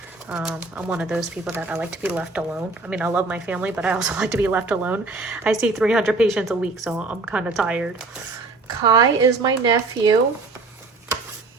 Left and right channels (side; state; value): left; quieter; 3.5 dB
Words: I'm one of those people that I like to be left alone. I mean, I love my family, but I also like to be left alone. I see 300 patients a week, so I'm kind of tired. Kai is my nephew.